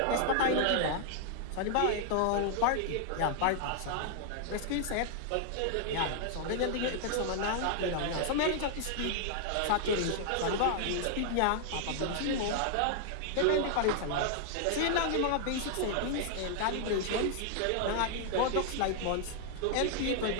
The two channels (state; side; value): different; both; correlation -0.01